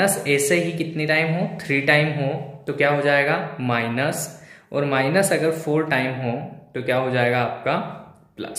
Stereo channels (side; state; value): both; identical; correlation 1.00